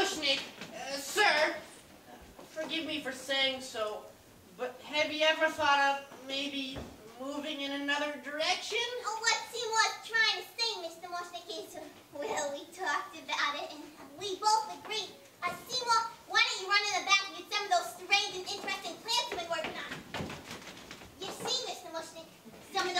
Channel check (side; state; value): both; identical; correlation 1.00